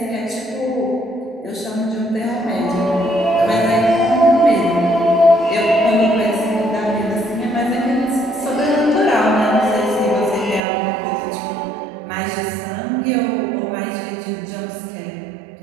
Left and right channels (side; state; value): left; drops out; at 10.6 s